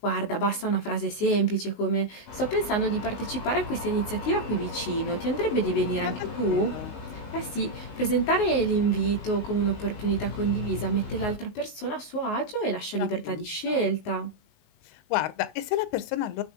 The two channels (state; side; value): late; right; 19 ms